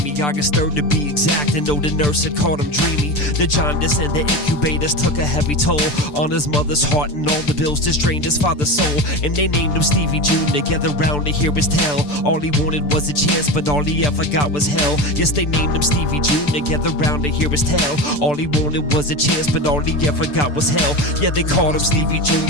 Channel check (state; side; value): late; right; 6.8 ms